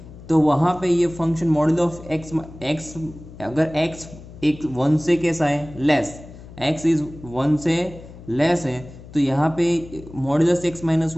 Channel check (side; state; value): left; noise; hum, 17 dB below the sound